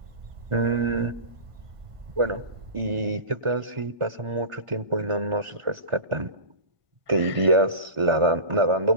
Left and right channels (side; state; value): left; late; 1.4 ms